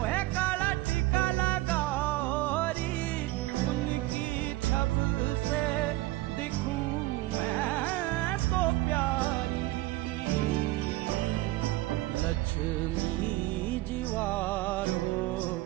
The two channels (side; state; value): left; quieter; 18.2 dB